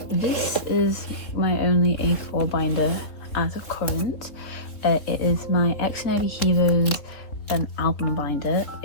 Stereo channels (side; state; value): right; late; 3.8 ms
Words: this is my only A4 binder as of current. It is my Xdinary Heroes album binder.